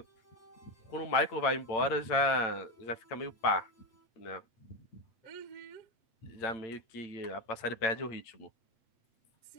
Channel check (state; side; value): late; right; 8.8 ms